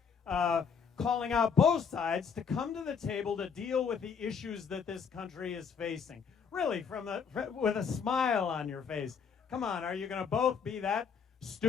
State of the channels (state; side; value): quieter; right; 6.4 dB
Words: calling out both sides to come to the table to deal with the issues that this country is facing. Really, with a smile on your face. Come on, are you going to both be that